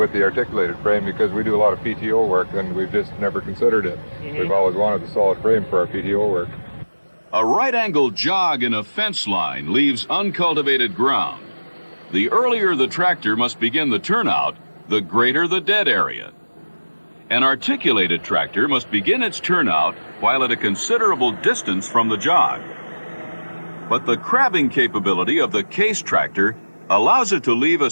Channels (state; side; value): inverted; both; correlation -1.00